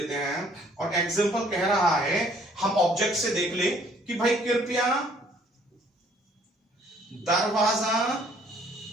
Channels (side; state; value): both; normal; correlation 0.60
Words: हैं, और एग्जांपल कह रहा है, हम ऑब्जेक्ट से देख ले कि भाई कृपया दरवाजा